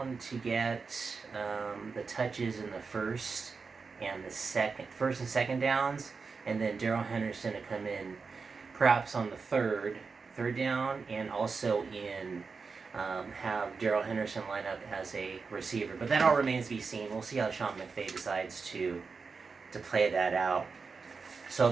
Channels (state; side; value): quieter; left; 4.8 dB